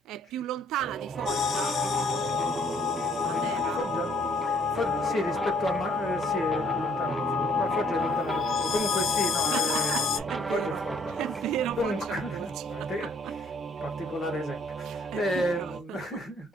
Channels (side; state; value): both; normal; correlation 0.64